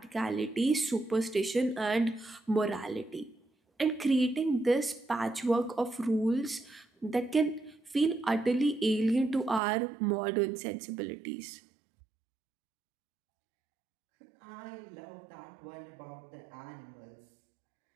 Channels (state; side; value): drops out; left; at 9.6 s